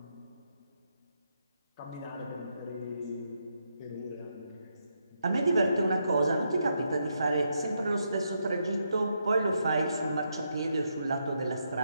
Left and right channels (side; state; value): both; inverted; correlation -0.80